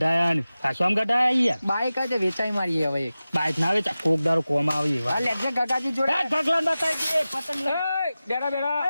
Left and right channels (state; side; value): inverted; both; correlation -0.95